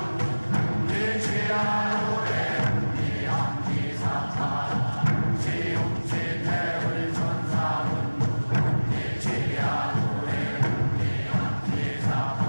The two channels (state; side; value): inverted; both; correlation -1.00